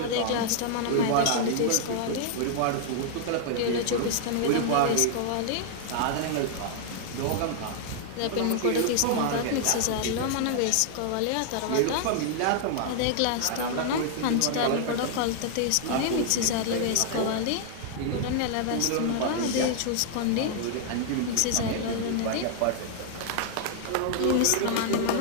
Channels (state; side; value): different; both; correlation 0.00